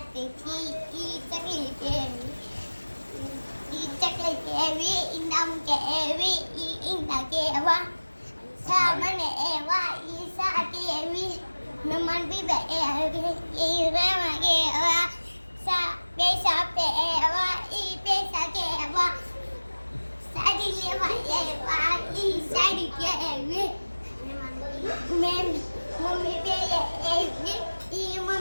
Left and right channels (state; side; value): inverted; both; correlation -1.00